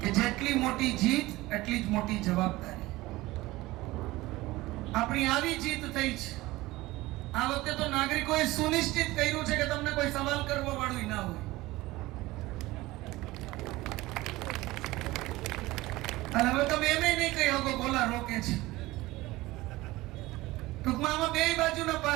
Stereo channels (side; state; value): left; quieter; 19.1 dB